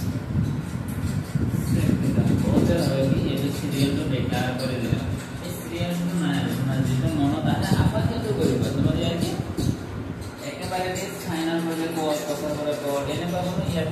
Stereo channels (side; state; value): both; identical; correlation 1.00